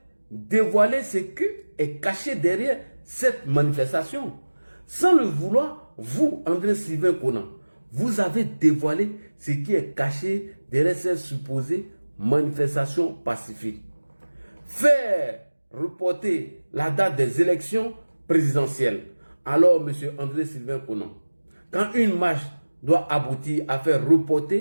dévoilé ce qui est caché derrière cette manifestation. Sans le vouloir, vous, André Sylvain Conan, vous avez dévoilé ce qui est caché derrière cette supposée manifestation pacifique. Faire reporter la date des élections présidentielles. Alors, M. André Sylvain Conan, quand une marche doit aboutir à faire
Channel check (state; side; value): inverted; both; correlation -1.00